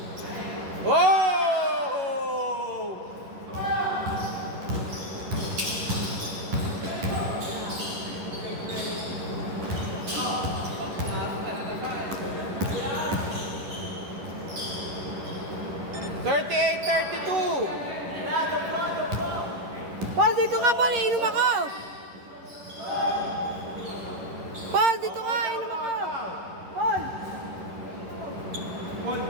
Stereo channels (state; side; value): late; left; 11 ms